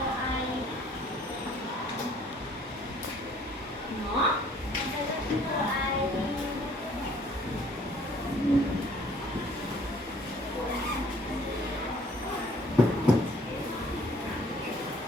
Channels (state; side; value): normal; both; correlation 0.58